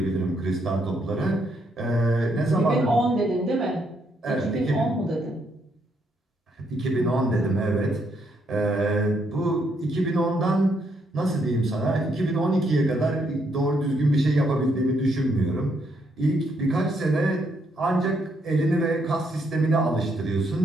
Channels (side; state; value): both; normal; correlation 0.74